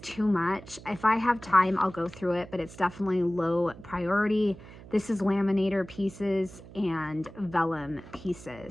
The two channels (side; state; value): right; noise; hum, 18 dB below the sound